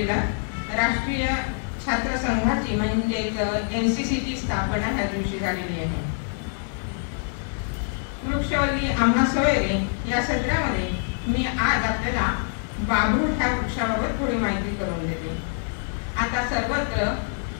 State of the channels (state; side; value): silent; right; 62 dB below the other